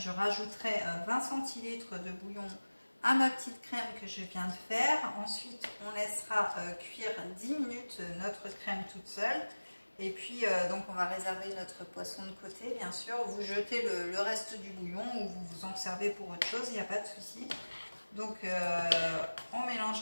rajouterai 20 centilitres de bouillon à ma petite crème que je viens de faire. Ensuite, on laissera cuire 10 minutes notre crème toute seule. Et puis, donc on va réserver notre poisson de côté, bien sûr. Vous jetez le reste du bouillon ou vous vous en servez pour autre chose, il n'y a pas de souci. Donc, on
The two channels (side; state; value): both; inverted; correlation -1.00